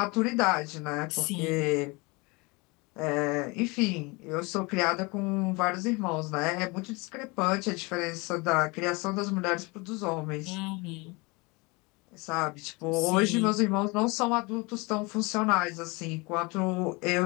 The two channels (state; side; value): quieter; right; 26.7 dB